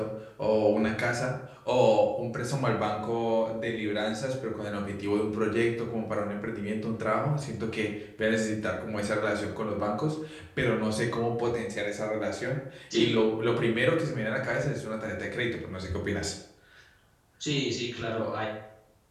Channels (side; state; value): both; identical; correlation 1.00